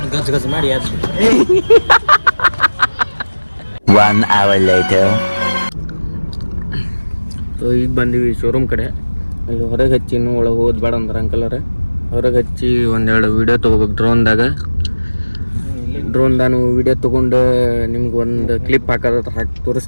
ಗಜ ಮಾಡಿ ಯಾರು. 1 hour later. ಸೊ ಈಗ ಬಂದೀವಿ ಶೋರೂಮ್ ಕಡೆ. ಅಲ್ಲಿ ಹೊರಗೆ ಹಚ್ಚಿ ಇನ್ನೂ ಒಳಗೆ ಹೋದ್ ಬೇಡ ಅಂದ್ರೆ ಅಂಕಲರ ಹೊರಗೆ ಹಚ್ಚಿ ಒಂದೆರಡು ವೀಡಿಯೋ ತೊಗೋಬೇಕು ಡ್ರೋನ್ದಾನು ವೀಡಿಯೋ ತೊಗೊಂಡು ನಿಮ್ಗೆ ಒಂದು ಕ್ಲಿಪ್ ಹಾಕಿ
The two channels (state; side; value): inverted; both; correlation -1.00